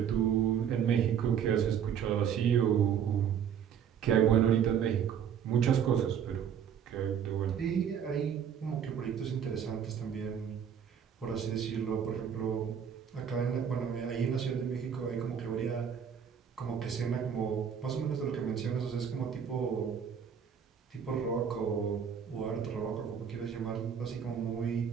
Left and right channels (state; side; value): quieter; left; 8.1 dB